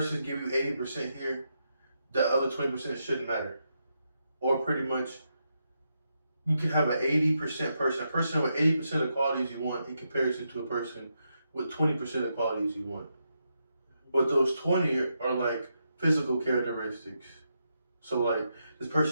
give you 80% here, the other 20% shouldn't matter. Or pretty much, you can have an 80% person, a person with 80% of the qualities you want in comparison to a person with 20% of the qualities you want. But those 20 are like physical characteristics. So like, this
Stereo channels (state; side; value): inverted; both; correlation -0.83